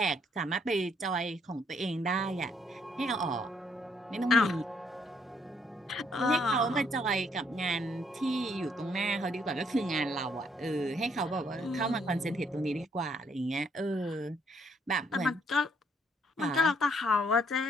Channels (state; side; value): normal; both; correlation 0.70